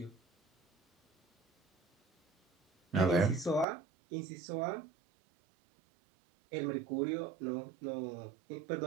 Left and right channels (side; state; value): left; drops out; at 3.7 s